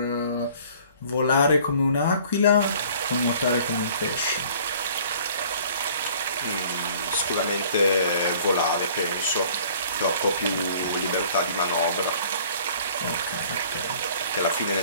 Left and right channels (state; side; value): inverted; both; correlation -0.52